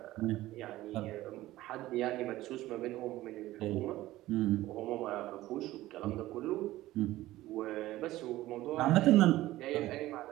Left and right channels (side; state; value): left; quieter; 16.3 dB